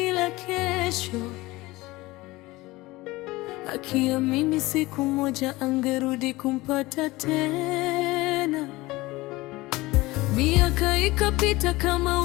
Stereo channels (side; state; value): right; quieter; 20.3 dB